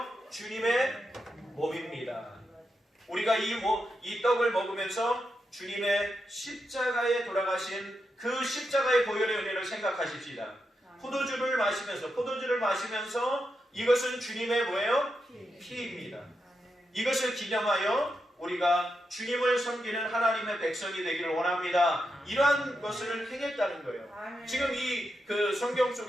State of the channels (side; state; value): both; normal; correlation 0.86